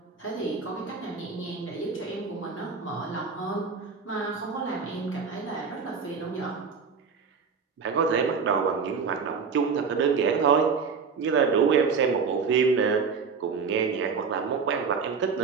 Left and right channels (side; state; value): left; quieter; 5.5 dB